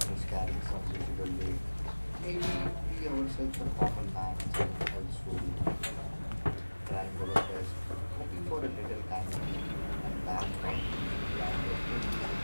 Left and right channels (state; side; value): inverted; both; correlation -1.00